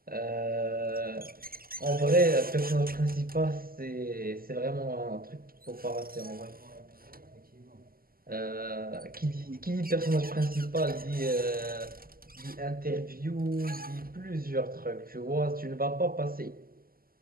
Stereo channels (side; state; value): left; late; 0.42 ms